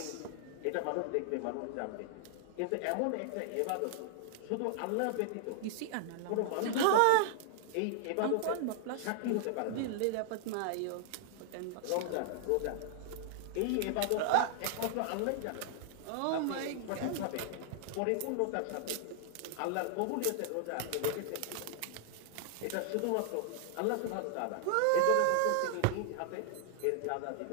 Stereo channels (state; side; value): different; both; correlation 0.00